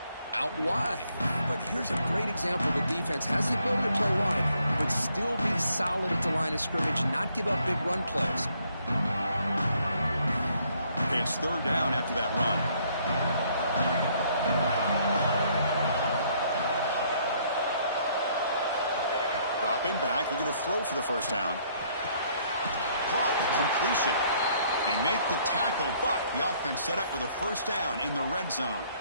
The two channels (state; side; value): inverted; both; correlation -0.67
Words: out wide. But here's a great example. The defense has the ability to play wide, but still be solid at the line of scrimmage, not give up big run plays. It's 3rd down after that run. Dropping back, they're going to throw for the 1st down. Caught, completion. They make the tackle, but the offense set up with a 1st down in the red zone.